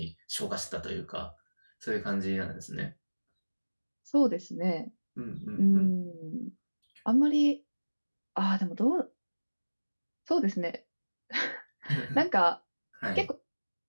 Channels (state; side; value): inverted; both; correlation -1.00